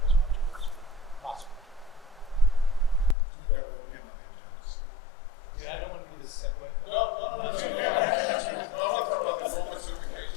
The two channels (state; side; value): drops out; right; at 3.2 s